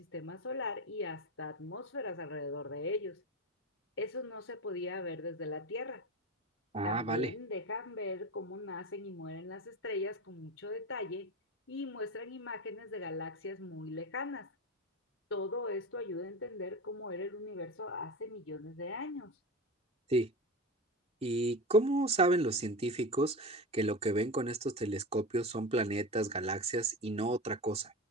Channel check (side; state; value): both; normal; correlation 0.26